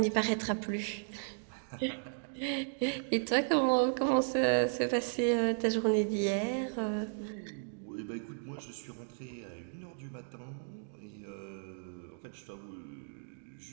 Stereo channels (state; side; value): silent; left; digital silence